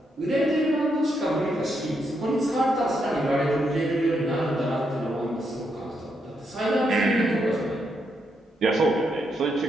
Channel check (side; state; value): both; normal; correlation 0.80